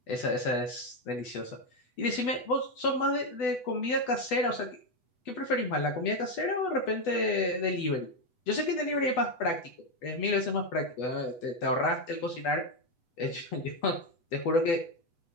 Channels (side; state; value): right; late; 8.1 ms